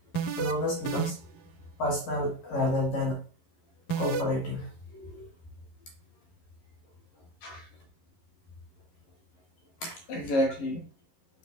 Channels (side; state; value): right; late; 11 ms